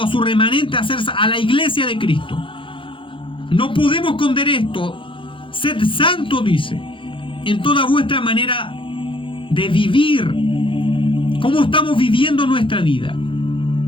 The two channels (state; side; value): late; right; 0.25 ms